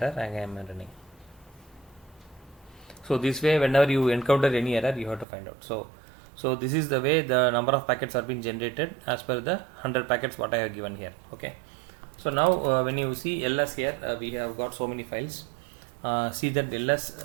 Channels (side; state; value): left; drops out; at 5.2 s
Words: Again I am running. So this way, whenever you encounter any error, you have to find out. So this is the way the number of packets are being generated as per the 100 packets what I have given here. Okay. So now when you see ls here, we have got so many files. See that ls